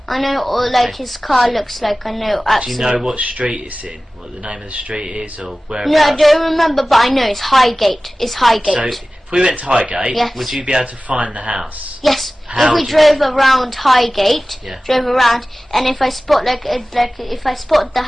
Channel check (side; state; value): both; normal; correlation 0.97